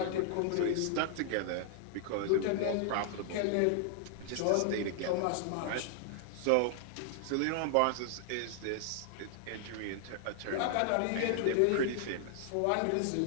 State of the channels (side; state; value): both; different; correlation 0.00